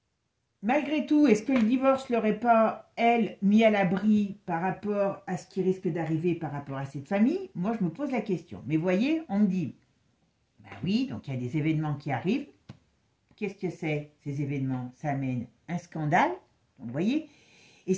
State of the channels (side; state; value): both; identical; correlation 1.00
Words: Malgré tout, est-ce que le divorce ne l'aurait pas, elle, mis à l'abri par rapport à ce qui risque d'arriver par rapport à cette famille? Moi, je me pose la question. Mais voyez, on me dit, ben oui, donc il y a des événements qui arrivent. Qu'est-ce que c'est, ces événements? Ça amène un scandale, donc, vous voyez. Et